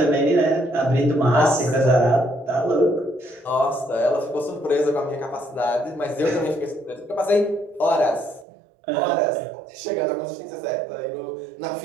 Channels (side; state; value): left; drops out; at 8.5 s